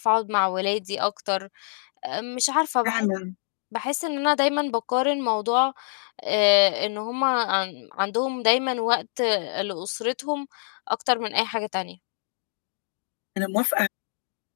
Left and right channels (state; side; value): silent; right; digital silence